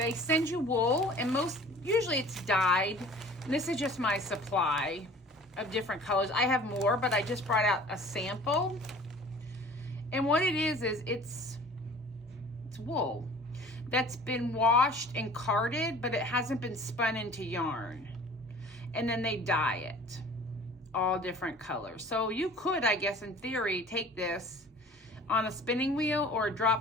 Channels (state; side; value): normal; both; correlation 0.47